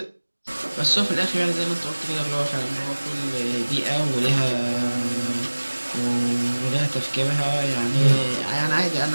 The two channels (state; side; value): inverted; both; correlation -1.00